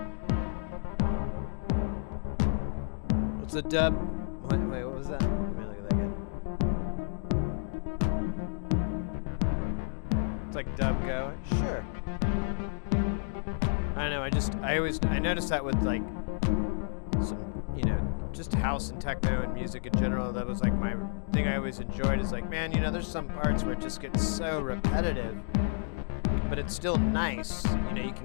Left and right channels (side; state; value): right; silent; digital silence